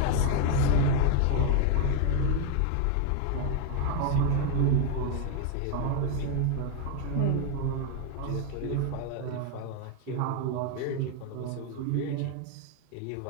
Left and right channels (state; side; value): different; both; correlation 0.01